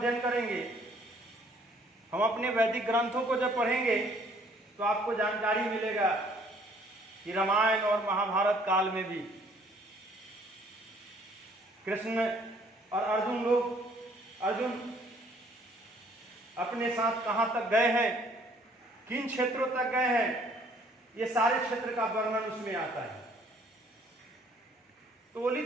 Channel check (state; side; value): normal; both; correlation 0.60